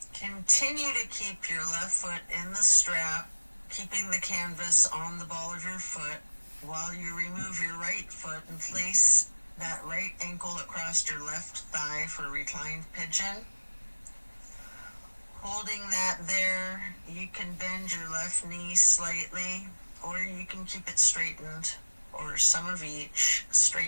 Continue to keep your left foot in the strap, keeping the canvas on the ball of your foot while you remove your right foot and place that right ankle across your left thigh for reclined pigeon. Holding that there, you can bend your left knee slightly, or you can keep it straightened, or some of each,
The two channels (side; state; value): both; inverted; correlation -1.00